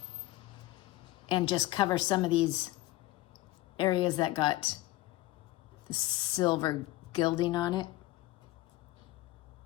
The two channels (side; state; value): right; quieter; 17.4 dB